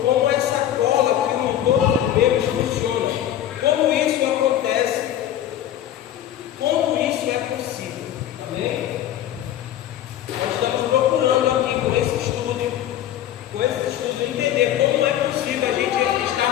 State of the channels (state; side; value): quieter; right; 11.6 dB